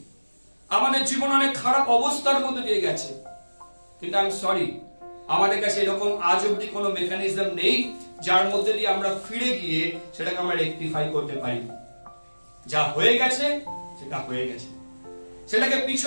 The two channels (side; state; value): both; inverted; correlation -1.00